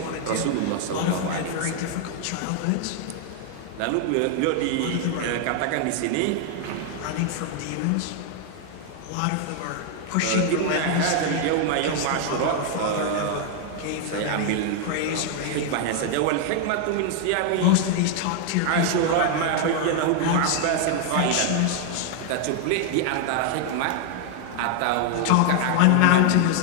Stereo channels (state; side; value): different; both; correlation 0.00